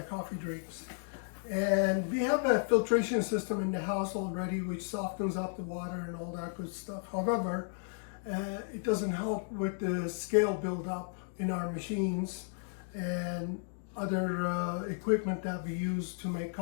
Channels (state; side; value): silent; right; 55 dB below the other